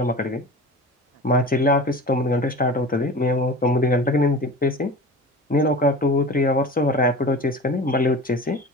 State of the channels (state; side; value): normal; both; correlation 0.35